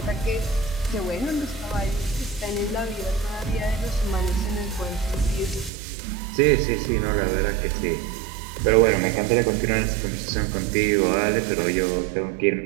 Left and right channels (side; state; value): left; drops out; at 5.7 s